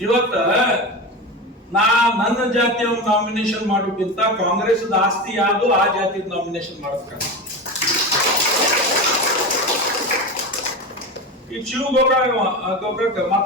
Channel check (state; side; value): normal; both; correlation 0.23